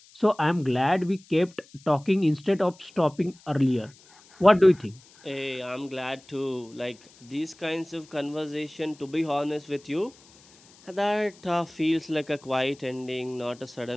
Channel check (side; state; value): left; noise; hiss, 26 dB below the sound